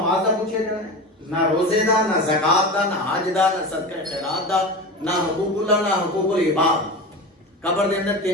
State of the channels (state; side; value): normal; both; correlation 0.27